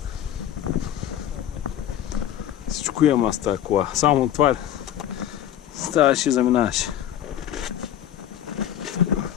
Всичко имам аз тази кола. Само това ставаш и заминаваш.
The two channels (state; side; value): quieter; right; 11.1 dB